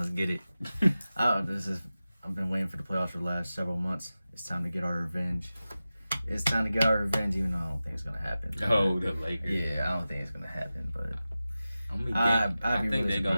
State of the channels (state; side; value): inverted; both; correlation -0.95